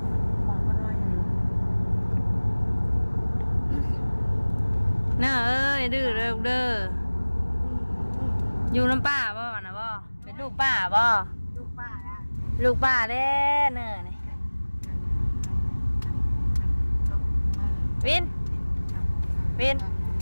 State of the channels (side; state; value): both; inverted; correlation -1.00